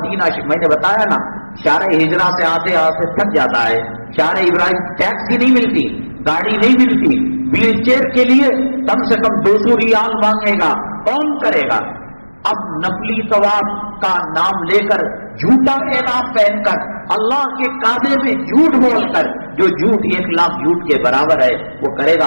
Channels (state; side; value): inverted; both; correlation -1.00